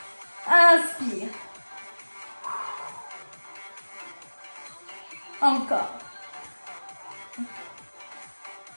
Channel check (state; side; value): inverted; both; correlation -1.00